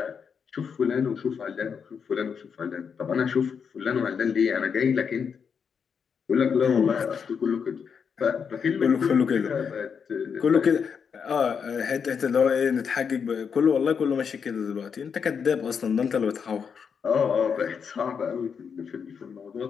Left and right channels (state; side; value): quieter; right; 6.6 dB